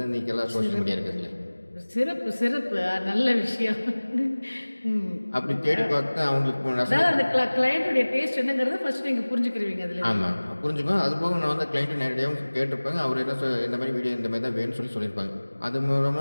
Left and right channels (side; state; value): both; inverted; correlation -1.00